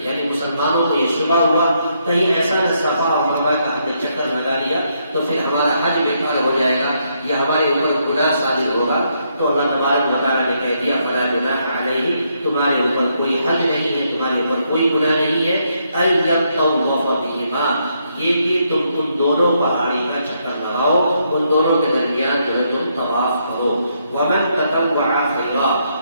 یعنی مسلمانوں کو یہ شبہ ہوا کہیں ایسا نہ صفا اور مروہ کا ہم نے چکر لگا لیا تو پھر ہمارا حج بیکار ہو جائے گا یا ہمارے اوپر گناہ صادر ہوگا، تو اللہ تبارک و تعالیٰ نے کہہ دیا فلا جناح علیہ، تمہارے اوپر کوئی حج نہیں ہے، تمہارے اوپر کوئی گناہ نہیں ہے، ان یطوف بہما، یہ کہ تم ان دونوں پہاڑی کا چکر لگاؤ، ان دونوں کے درمیان جو ہے تم طواف کرو۔ ومن تطوع خیرا،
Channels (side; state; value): both; inverted; correlation -0.76